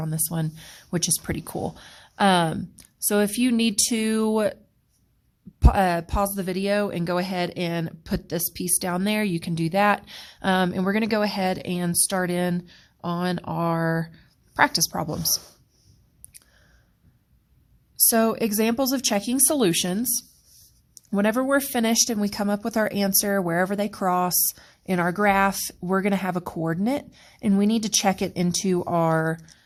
this one, which is pretty cool. So if you need to pause the video and go ahead and put this piece down there, you can do that. And we're going to go ahead and start in on our practice problems. So examples of checking solutions. Whenever we're finished and we come up with our answer, wherever they cross in our graph, we're going to have a coordinate, and we need to check it into our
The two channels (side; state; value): both; identical; correlation 1.00